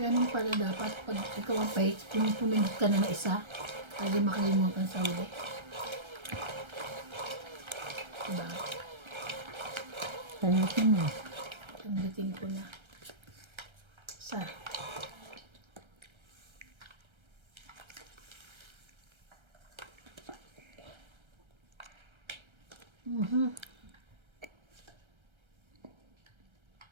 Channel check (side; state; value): left; late; 1.3 ms